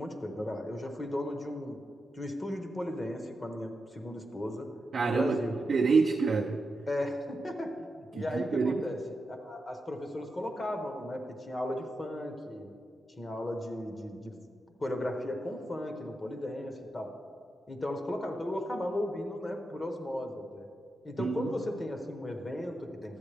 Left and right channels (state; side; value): normal; both; correlation 0.88